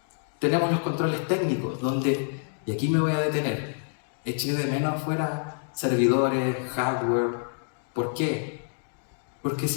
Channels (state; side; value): silent; right; digital silence